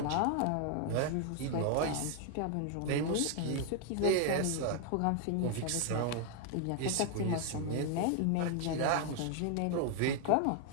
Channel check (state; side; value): different; both; correlation 0.00